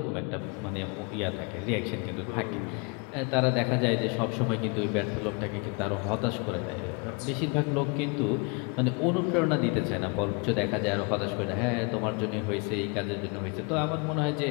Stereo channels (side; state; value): right; quieter; 32.1 dB